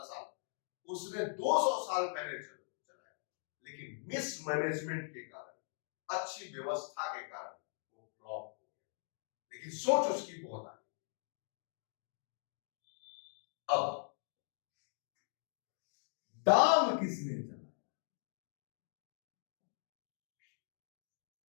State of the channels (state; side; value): silent; right; digital silence